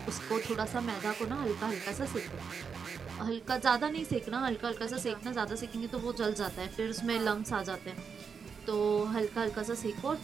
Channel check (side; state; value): left; quieter; 6.1 dB